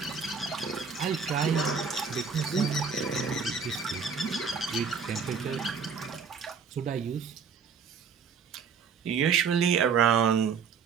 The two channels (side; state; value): left; quieter; 6.1 dB